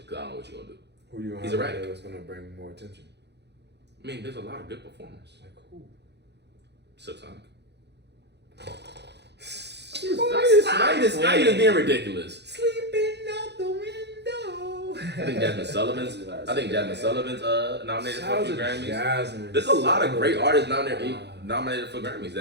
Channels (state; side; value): late; left; 0.50 ms